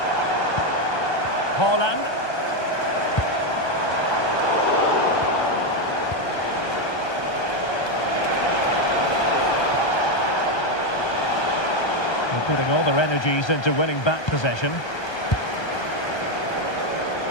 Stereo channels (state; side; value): late; right; 1.3 ms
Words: Haaland. They're putting all their energies into winning back possession.